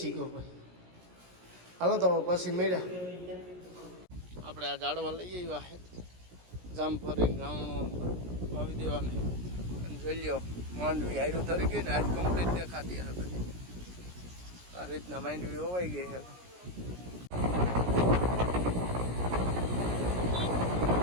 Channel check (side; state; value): left; late; 17 ms